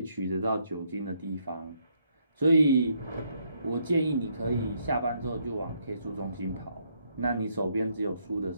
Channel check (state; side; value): inverted; both; correlation -0.73